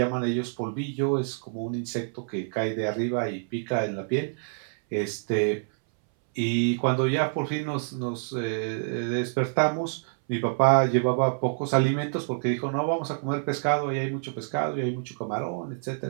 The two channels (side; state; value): left; silent; 60 dB below the other